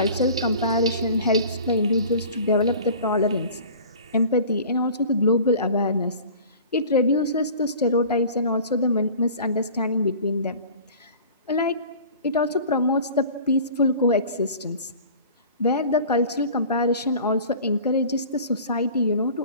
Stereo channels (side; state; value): both; inverted; correlation -0.43